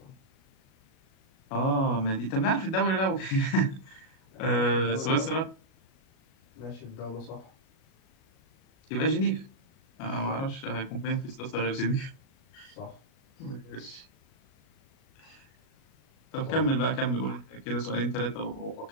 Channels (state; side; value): late; right; 37 ms